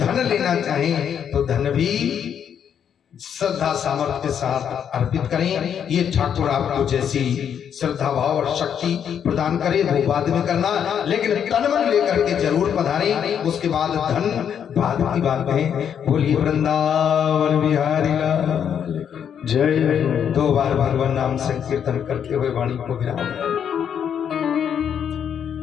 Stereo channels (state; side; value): quieter; right; 8.4 dB